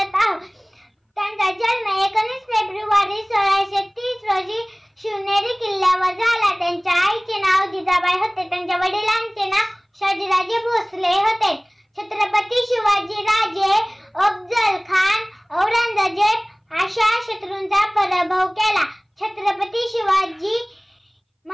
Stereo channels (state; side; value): identical; both; correlation 1.00